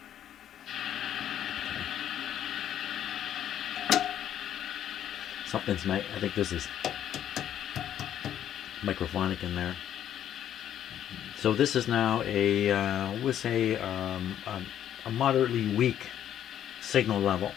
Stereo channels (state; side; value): quieter; right; 10.6 dB